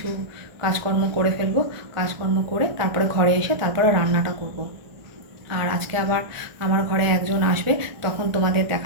কাজকর্ম করে ফেলবো। কাজকর্ম করে তারপরে ঘরে এসে তারপরে রান্নাটা করব। আর আজকে আবার আমার ঘরে একজন আসবে, তখন তোমাদের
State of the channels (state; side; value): late; left; 1.4 ms